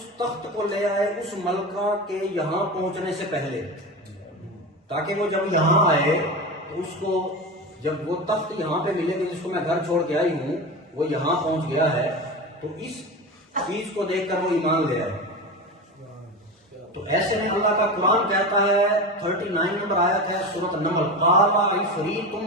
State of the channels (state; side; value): normal; both; correlation 0.25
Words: تخت کو لے آئے اس ملکہ کے یہاں پہنچنے سے پہلے، تاکہ وہ جب یہاں آئے تو اس کو جب وہ تخت یہاں پہ ملے گا جس کو میں گھر چھوڑ کے آئی ہوں، وہ یہاں پہنچ گیا ہے تو اس چیز کو دیکھ کر وہ ایمان لے آئے۔ تو ایسے میں اللہ کا قرآن کہتا ہے 39 نمبر آیت ہے سورۃ نمل، قال عفریت